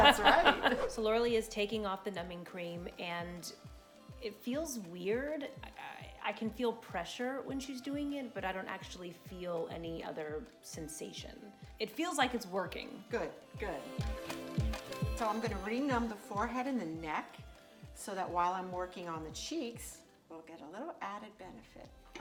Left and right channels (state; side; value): identical; both; correlation 1.00